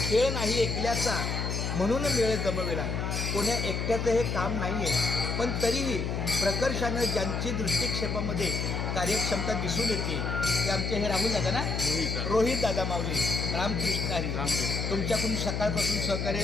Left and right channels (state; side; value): noise; left; hum, 1 dB below the sound